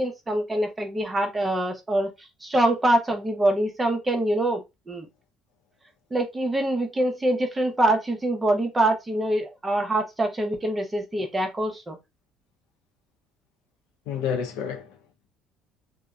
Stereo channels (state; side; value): normal; both; correlation 0.80